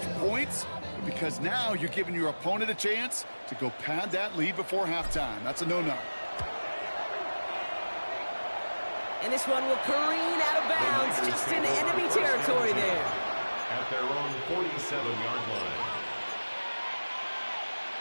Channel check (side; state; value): both; inverted; correlation -1.00